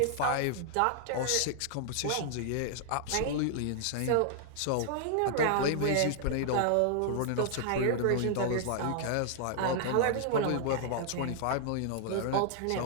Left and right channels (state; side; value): different; both; correlation -0.01